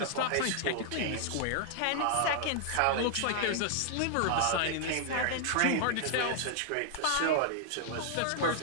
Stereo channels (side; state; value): both; different; correlation 0.00